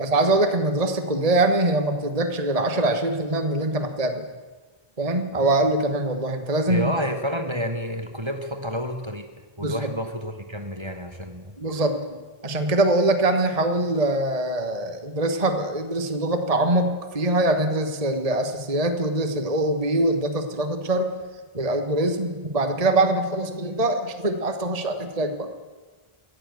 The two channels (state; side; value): late; left; 1.7 ms